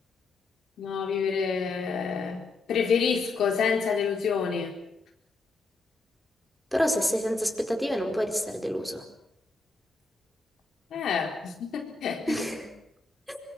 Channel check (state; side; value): quieter; right; 3.7 dB